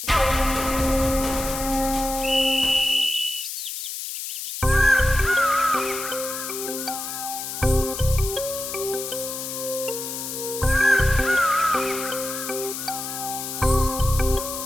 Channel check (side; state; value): left; noise; hiss, 6 dB below the sound